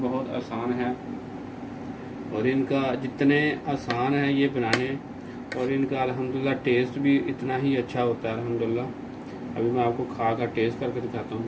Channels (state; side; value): identical; both; correlation 1.00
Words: आसान है और इनका जितने आसान है ये बनाने और इनका अल्हम्दुलिल्लाह टेस्ट भी इतना ही अच्छा होता है अल्हम्दुलिल्लाह। अभी मैं आपको खा कर टेस्ट करके दिखाता हूँ।